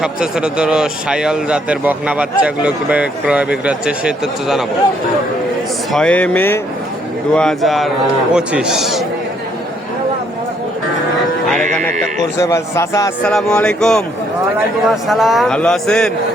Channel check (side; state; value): both; normal; correlation 0.69